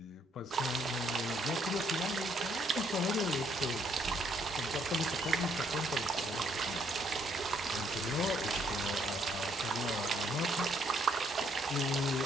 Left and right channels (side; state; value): both; normal; correlation 0.70